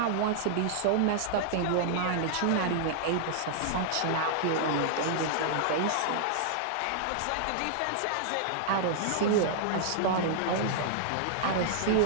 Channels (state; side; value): different; both; correlation -0.01